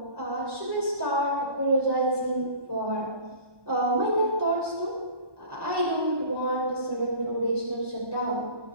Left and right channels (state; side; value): late; left; 1.2 ms